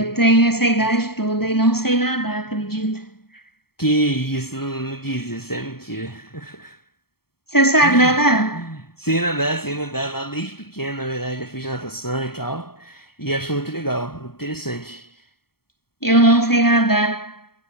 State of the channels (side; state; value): right; late; 0.95 ms